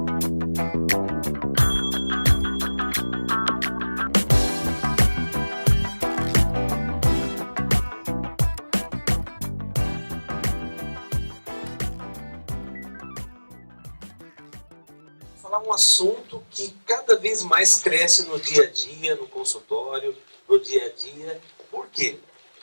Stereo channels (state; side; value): inverted; both; correlation -1.00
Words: um assunto que cada vez mais cresce no dia a dia, no consultório, no dia a dia. Por quê?